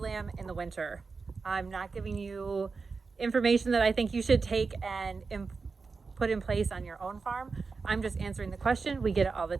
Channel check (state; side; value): quieter; left; 4.6 dB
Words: in the winter? I'm not giving you information that I think you should take and put in place on your own farm. I'm just answering the question. We get it all the